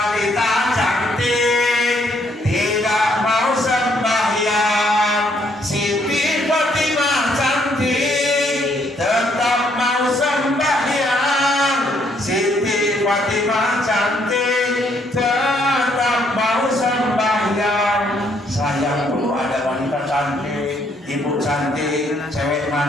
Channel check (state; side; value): normal; both; correlation 0.69